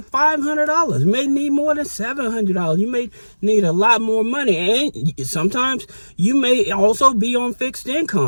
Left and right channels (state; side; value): inverted; both; correlation -1.00